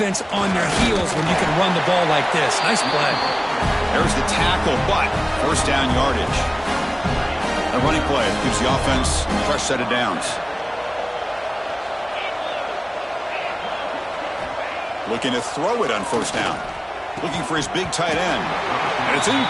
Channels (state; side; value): identical; both; correlation 1.00